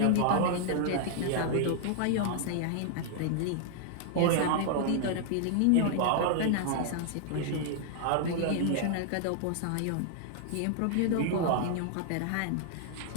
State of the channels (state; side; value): different; both; correlation -0.01